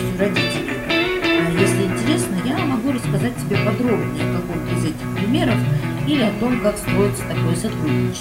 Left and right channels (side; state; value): both; identical; correlation 1.00